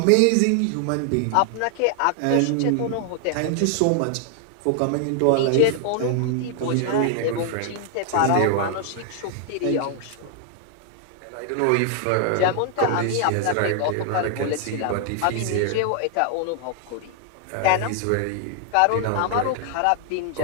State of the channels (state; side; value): different; both; correlation 0.00